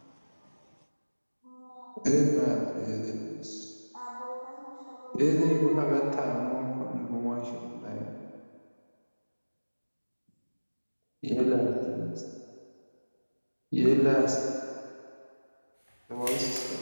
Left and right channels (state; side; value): inverted; both; correlation -1.00